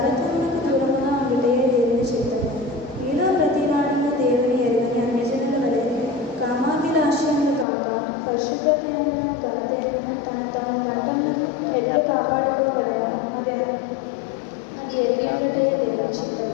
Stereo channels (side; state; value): right; drops out; at 7.7 s